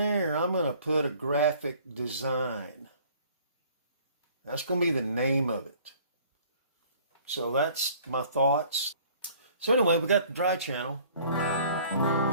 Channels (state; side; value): inverted; both; correlation -0.54